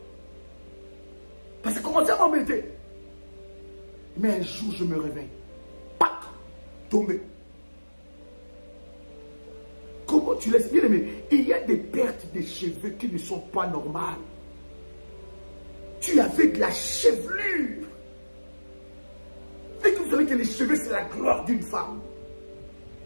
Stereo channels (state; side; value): inverted; both; correlation -1.00